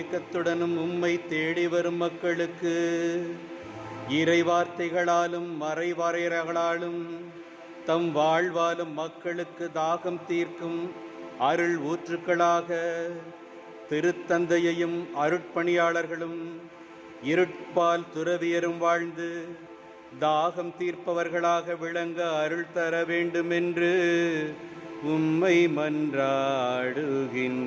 உம்மை தேடி வரும் மக்களுக்கு இறைவார்த்தைகளாலும் மறைவாரையர்களாலும் தம் வாழ்வாலும் மக்களுக்கு தாகம் தீர்க்கும் அருள் ஊற்றுக்களாக திருத்தந்தையையும் அருட்பணியாளர்களும் இருட்பால் துறவியரும் வாழ்ந்து தாகம் தீர்ப்பவர்களாக விளங்க அருள் தர வேண்டுமென்று உம்மை மன்றாடுகின்றோம்.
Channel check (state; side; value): identical; both; correlation 1.00